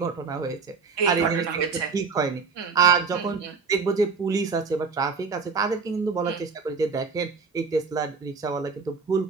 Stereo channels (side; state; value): left; quieter; 5.0 dB